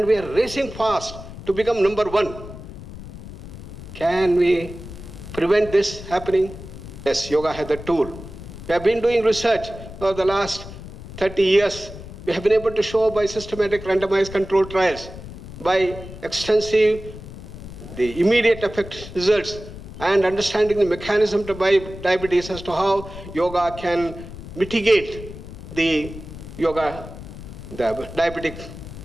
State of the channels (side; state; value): left; noise; rumble, 13 dB below the sound